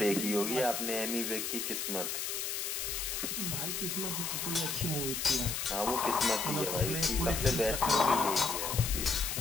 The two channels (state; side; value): noise; left; hiss, 2 dB below the sound